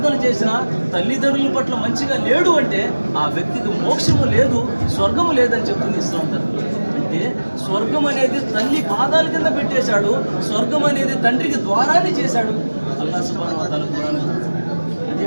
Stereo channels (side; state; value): both; inverted; correlation -1.00